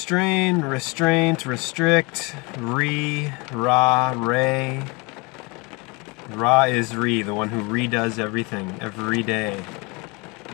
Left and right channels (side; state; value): right; quieter; 27.9 dB